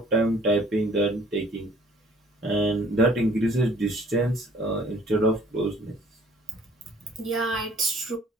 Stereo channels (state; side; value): normal; both; correlation 0.55